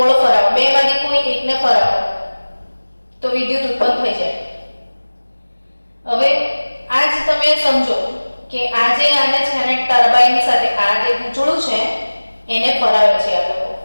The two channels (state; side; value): inverted; both; correlation -1.00